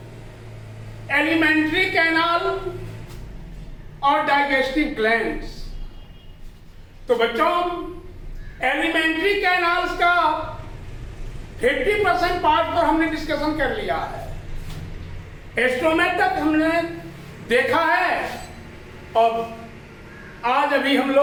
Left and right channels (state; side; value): identical; both; correlation 1.00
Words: एलिमेंट्री कैनाल और डाइजेस्टिव ग्लैंड्स। तो बच्चों, एलिमेंट्री कैनाल्स का 50% पार्ट पर हमने डिस्कशन कर लिया है। स्टोमक तक हमने देखा है और आज अभी हम